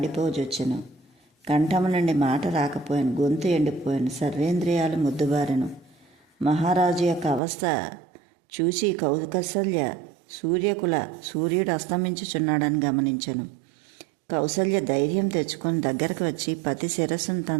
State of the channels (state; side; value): drops out; left; at 7.4 s